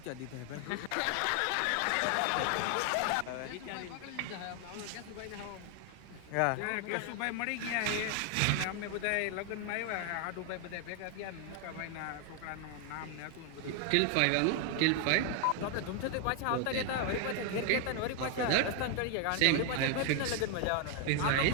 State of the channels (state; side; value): different; both; correlation 0.00